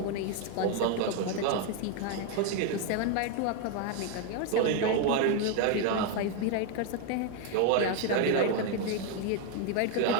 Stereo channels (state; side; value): different; both; correlation 0.01